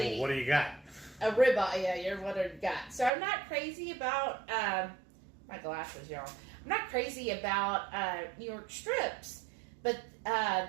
Well, what do you got? A ribeye, yeah, you're what I got. So I'm not crazy about, my glasses, y'all. I'm not crazy about New York strips, but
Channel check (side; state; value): left; drops out; at 3.1 s